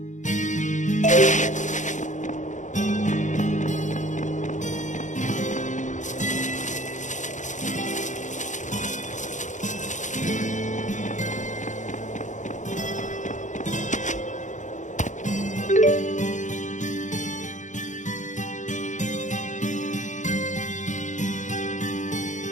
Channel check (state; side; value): late; right; 0.36 ms